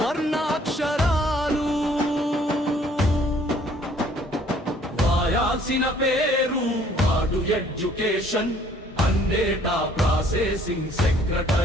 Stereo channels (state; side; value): normal; both; correlation 0.59